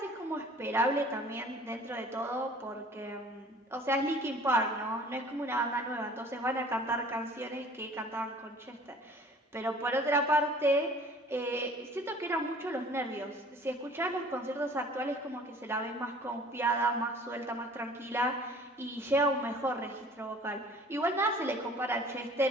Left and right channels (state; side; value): normal; both; correlation 0.49